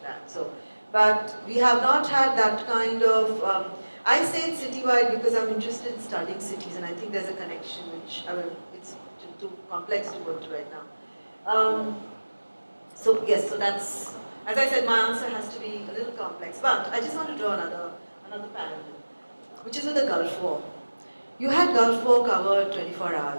So, but we have not had that kind of. I say it's citywide because I'm interested in studying cities, and I think there's a connection which it's too complex to go into right now. So yes, so that's, as I said, my answer has to be a little complex, but I just want to draw another parallel, which is with the Gulf War. You had Gulf War covered 24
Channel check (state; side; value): inverted; both; correlation -1.00